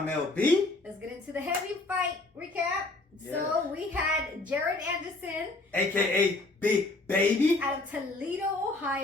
LB. Let's get into the heavy fight recap. So we had Jared Anderson, aka Big Baby, out of Toledo,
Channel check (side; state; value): right; quieter; 3.0 dB